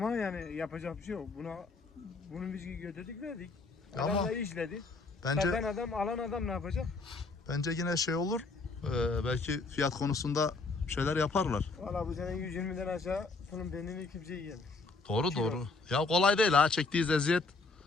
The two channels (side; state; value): right; quieter; 3.8 dB